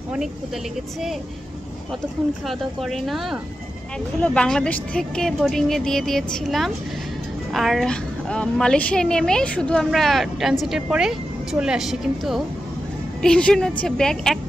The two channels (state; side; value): normal; both; correlation 0.90